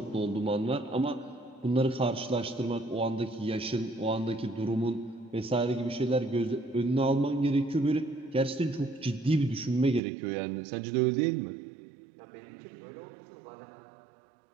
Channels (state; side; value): drops out; left; at 10.0 s